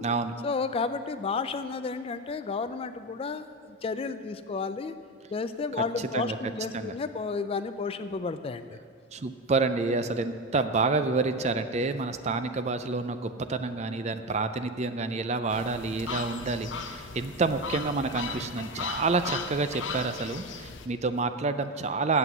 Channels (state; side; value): normal; both; correlation 0.19